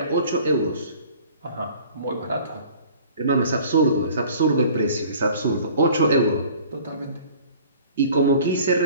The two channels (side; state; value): both; inverted; correlation -0.49